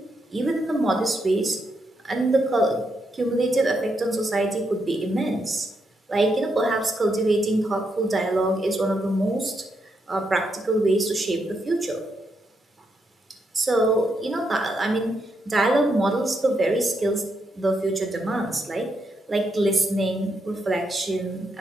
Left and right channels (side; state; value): both; normal; correlation 0.80